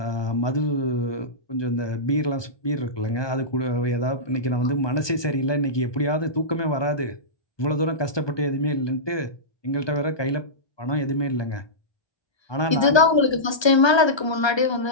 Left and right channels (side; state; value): right; late; 1.2 ms